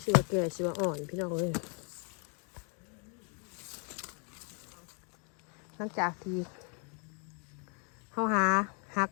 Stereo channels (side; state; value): right; quieter; 37.9 dB